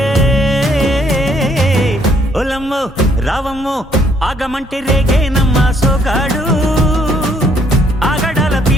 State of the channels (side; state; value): both; normal; correlation 0.67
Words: ఒలమ్మో రావమ్మో ఆగమంటే రేగేనమ్మ సోగాడు ఆగడాల